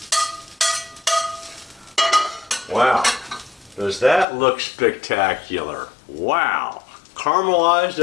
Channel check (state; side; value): drops out; right; at 4.2 s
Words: Wow, does that look spectacular? Wow, caramelized